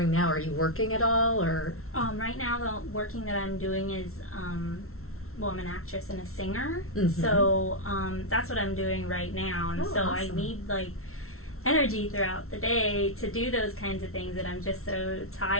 now? Are you working at all, or? Right now, the working that I'm doing is, I'm an actress and a singer, Mhm. so that's what I'm doing right now, and Oh, so I awesome. need energy throughout the day to do those kinds of things, and I'm just so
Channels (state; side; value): late; right; 0.63 ms